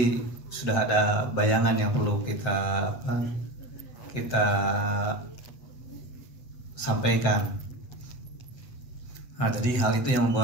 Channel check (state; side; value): late; right; 7.8 ms